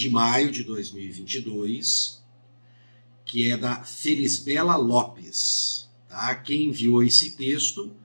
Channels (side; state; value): both; inverted; correlation -1.00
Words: maio de 2022, que é da Felisbela Lopes. Quem enviou esse texto,